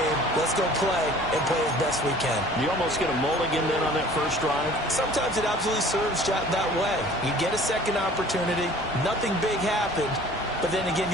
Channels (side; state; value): both; normal; correlation 0.49